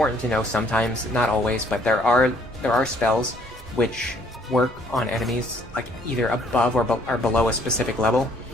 to know sometimes, not always, but there are spells which work on enemies like either above or below a specific level,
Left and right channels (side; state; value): both; normal; correlation 0.63